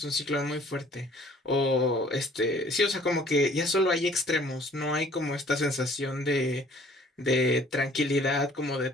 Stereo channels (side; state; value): both; normal; correlation 0.55